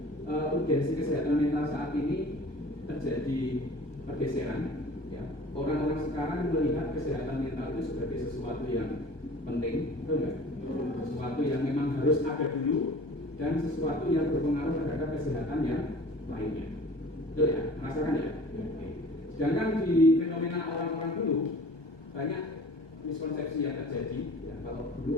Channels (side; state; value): right; late; 1.2 ms